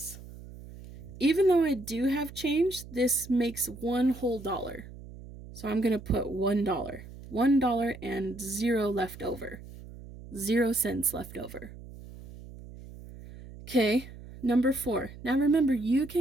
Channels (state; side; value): noise; right; hum, 16 dB below the sound